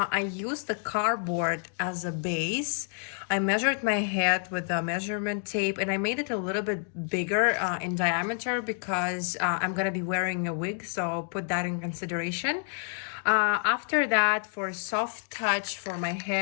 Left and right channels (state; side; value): silent; right; 59 dB below the other